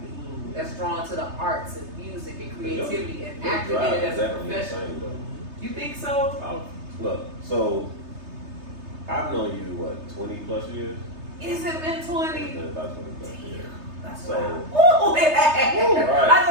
me that's drawn to the arts and music and creativity and acting in it as a profession. You think so? Look, so I've known you, what, 20 plus years? Is it been 20? It's been about 20 plus years. That's So- wow. Ooh, right. I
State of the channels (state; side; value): late; left; 3.3 ms